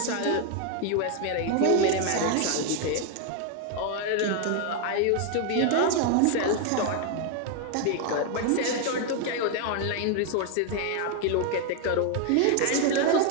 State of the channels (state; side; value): different; both; correlation 0.01